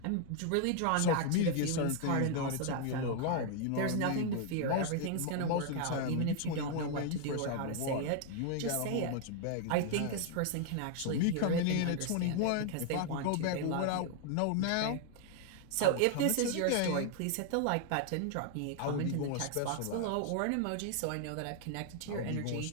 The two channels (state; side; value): different; both; correlation 0.00